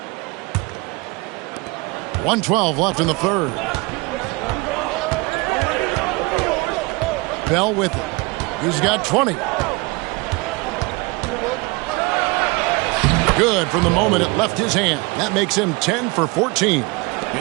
.112 left in the third. Bell with it. He's got 20. Good from the moment it left his hand. That makes him 10 for 14.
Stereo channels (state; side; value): quieter; left; 25.8 dB